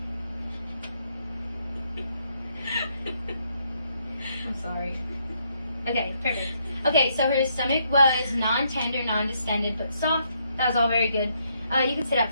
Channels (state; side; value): inverted; both; correlation -0.74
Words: I'm sorry. Okay, perfect. Okay, so her stomach was non-tender, non-distended, but soft. That was all very good. You can sit up